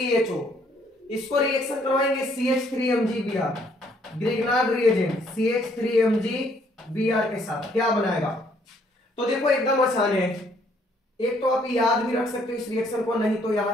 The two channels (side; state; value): both; normal; correlation 0.66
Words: इसको रिएक्शन करवाएंगे CH3MgBr, ग्रिग्नार्ड रिएजेंट CH3MgBr के साथ, क्या बनाएगा। तो देखो एकदम आसान है, एक तो आप याद भी रख सकते हो इस रिएक्शन को, नहीं तो